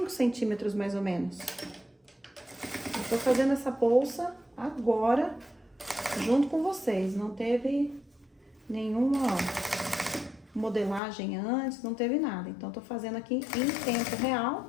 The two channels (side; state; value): right; drops out; at 11.0 s